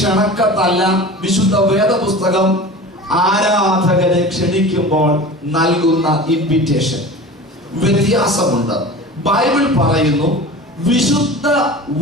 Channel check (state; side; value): normal; both; correlation 0.36